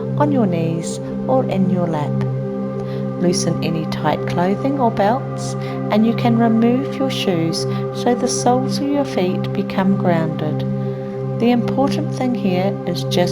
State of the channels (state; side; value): identical; both; correlation 1.00